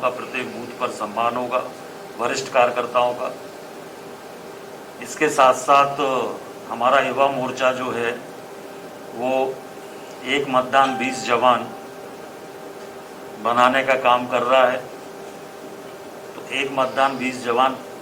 प्रत्येक बूथ पर सम्मान होगा, वरिष्ठ कार्यकर्ताओं का। इसके साथ साथ हमारा युवा मोर्चा जो है वो एक मतदान 20 जवान बनाने का काम कर रहा है। तो एक मतदान 20 जवान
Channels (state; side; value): identical; both; correlation 1.00